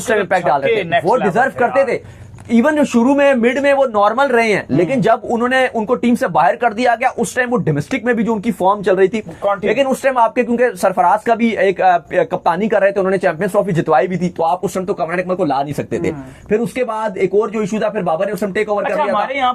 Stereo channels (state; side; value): identical; both; correlation 1.00